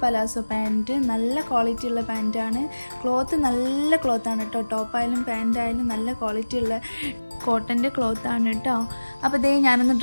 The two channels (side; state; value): both; inverted; correlation -1.00